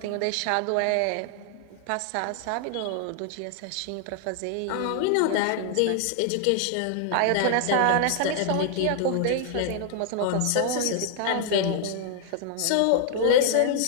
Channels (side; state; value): both; different; correlation 0.00